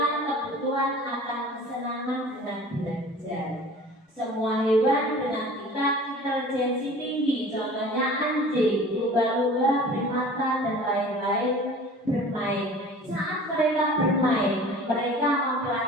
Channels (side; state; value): both; normal; correlation 0.43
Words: kebutuhan akan kesenangan dengan belajar. Semua hewan dengan tingkat intelijensi tinggi, contohnya anjing, lumba-lumba, primata, dan lain-lain, bermain. Saat mereka bermain, mereka